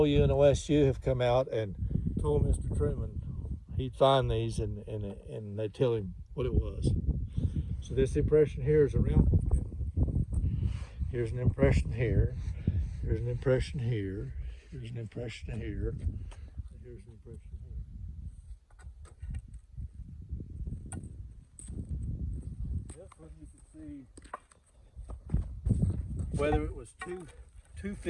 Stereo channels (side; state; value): both; identical; correlation 1.00